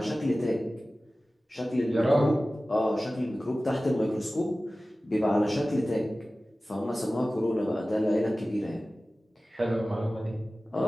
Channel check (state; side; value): normal; both; correlation 0.96